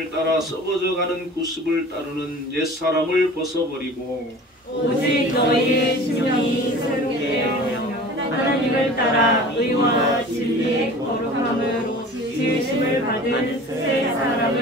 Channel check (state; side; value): normal; both; correlation 0.41